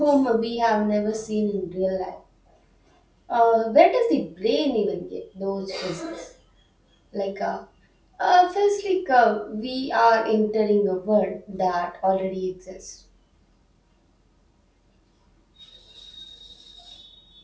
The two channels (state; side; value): identical; both; correlation 1.00